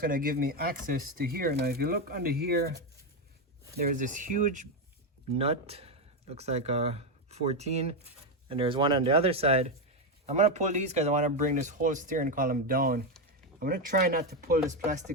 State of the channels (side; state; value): both; normal; correlation 0.08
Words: give me access to here. Now if you look under here, there's this huge nut, looks like a 14, and there's one on the other side. I'm gonna pull these because I want to bring this whole steering column down. I'm gonna try not to pull this